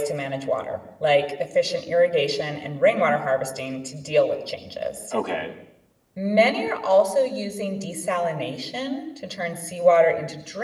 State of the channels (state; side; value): identical; both; correlation 1.00